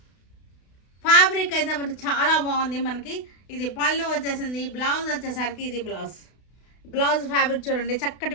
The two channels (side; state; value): right; late; 32 ms